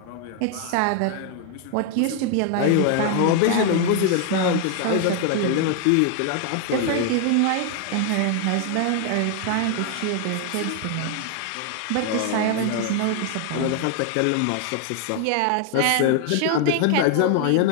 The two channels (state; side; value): different; both; correlation 0.00